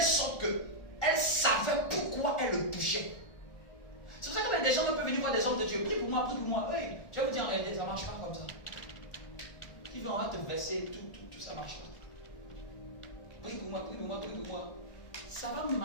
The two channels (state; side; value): late; right; 1.4 ms